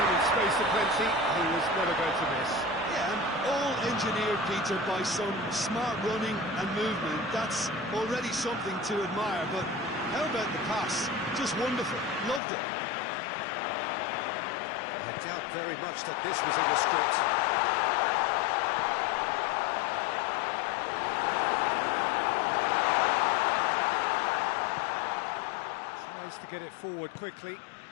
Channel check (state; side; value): drops out; right; at 12.4 s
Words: Space aplenty, he was never going to miss. Yeah, and all engineered, Peter, by some smart running and movement. That's already something to admire, but how about the pass? Just wonderful. Loved it. I doubt very much that this was in the script. Tries to get it forward quickly.